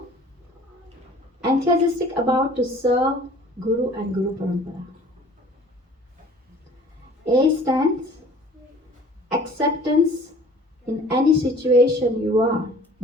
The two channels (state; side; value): normal; both; correlation 0.49